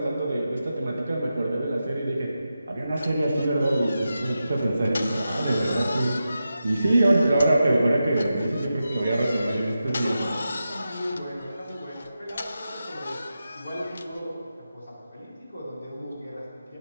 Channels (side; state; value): both; inverted; correlation -0.90